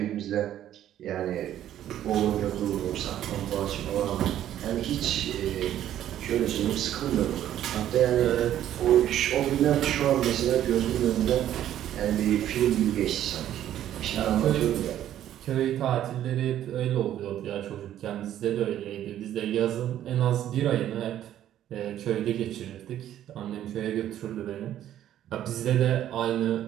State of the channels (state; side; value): quieter; left; 11.6 dB